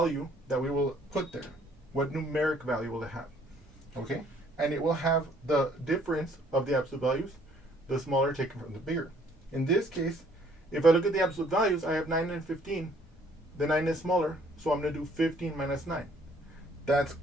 that we will put there? What numeric value will it have? Okay? And it will have the difference of the absolute values, the smaller taken from the bigger. In this case, if I look at the absolute values, I have 9 and 15. The 9 is smaller, so I'm going to do 15 minus 9. That's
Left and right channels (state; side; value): normal; both; correlation 0.61